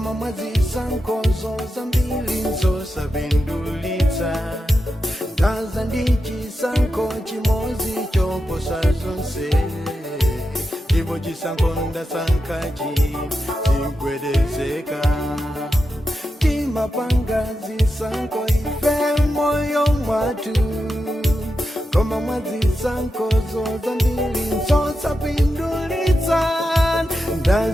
mwazisankho zambiri zosapindulitsa. Ndaza ndi chisankho chimodzi choposa zonse, ndipo chisankho ndasankhachi chigwedezeka. Timapanga zisankho ife moyo mwatu, koma mwazisankho zambiri zosapindulitsa.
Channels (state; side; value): normal; both; correlation 0.89